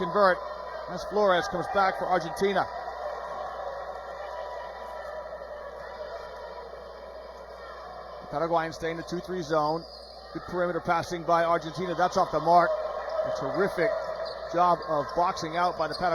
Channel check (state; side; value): identical; both; correlation 1.00